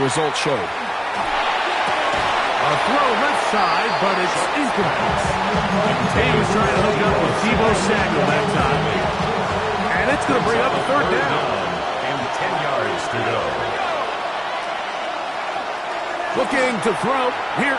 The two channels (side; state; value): both; identical; correlation 1.00